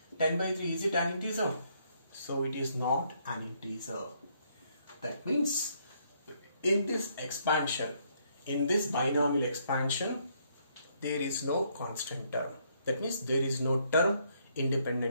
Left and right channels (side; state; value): both; inverted; correlation -0.71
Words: 10 by 3, is it an integer? So it is not an integer. That means in this expansion, in this binomial expansion, there is no constant term. That means there is no term